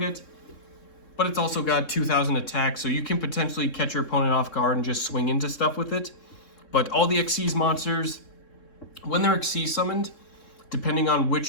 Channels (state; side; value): late; right; 3.7 ms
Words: but it's also got 2000 attack, so you can potentially catch your opponent off guard and just swing into stuff with it. But all the Xyz monsters, when they're Xyz summoned, depending on